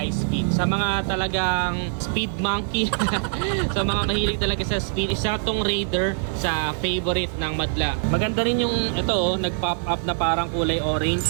speed. Sa mga talagang speed monkey, sa mga mahilig talaga sa speed, isa tong Raider sa favorite ng madla. Maganda rin yung ito, nag-pop up na parang kulay orange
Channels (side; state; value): left; silent; 63 dB below the other